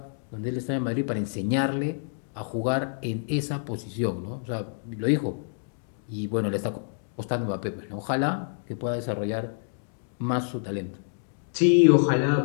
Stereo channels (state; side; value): silent; right; digital silence